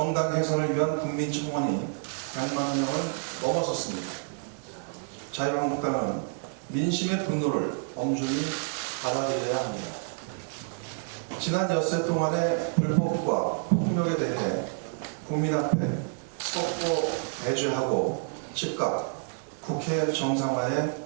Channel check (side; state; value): left; silent; 59 dB below the other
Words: 해산을 위한 국민 청원이 100만 명을 넘어섰습니다. 자유한국당은 민심의 분노를 엄중히 받아들여야 합니다. 지난 엿새 동안의 불법과 폭력에 대해 국민 앞에 속보 배제하고 즉각 국회 정상화에